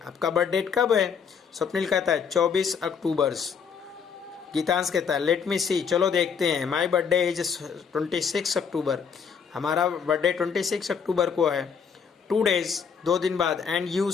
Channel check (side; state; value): right; quieter; 6.5 dB